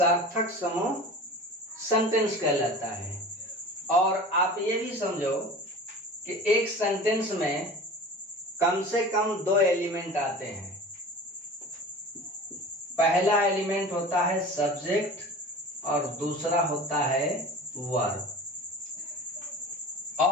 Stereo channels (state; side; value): normal; both; correlation 0.37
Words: समूह सेंटेंस कहलाता है। और आप ये भी समझो कि एक सेंटेंस में कम से कम 2 एलिमेंट आते हैं। पहला एलिमेंट होता है सब्जेक्ट और दूसरा होता है वर्ब।